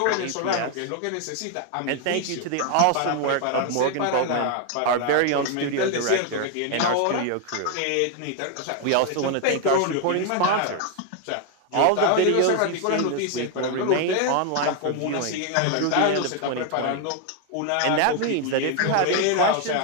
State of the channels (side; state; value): both; different; correlation 0.01